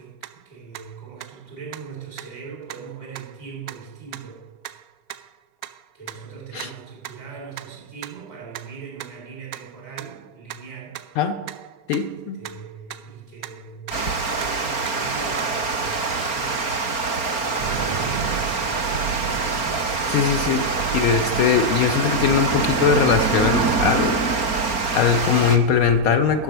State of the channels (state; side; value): late; right; 4.4 ms